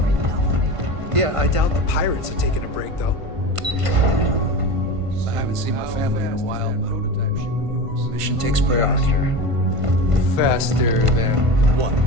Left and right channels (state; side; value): late; left; 1.5 ms